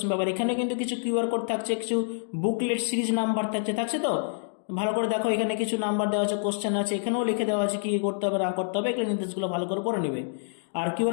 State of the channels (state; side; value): silent; right; digital silence